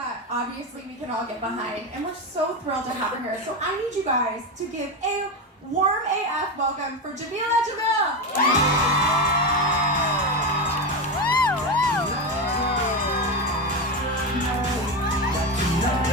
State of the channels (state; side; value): normal; both; correlation 0.15